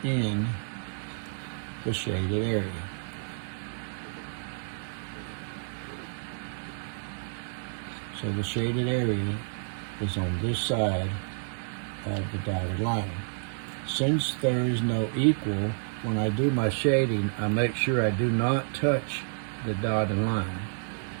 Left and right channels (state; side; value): silent; left; digital silence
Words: in the shaded area. So the shaded area is on this side of the dotted line. Since there is no equal, when I do my shading, I make sure I do not touch the dotted line